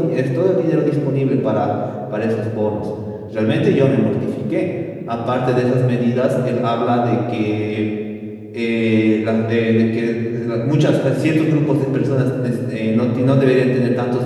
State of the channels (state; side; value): identical; both; correlation 1.00